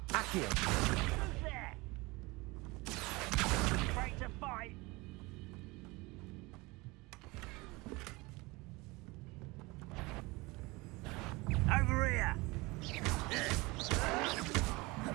Accio. Who's there? Afraid to fight? Over here!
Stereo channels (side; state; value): left; quieter; 23.6 dB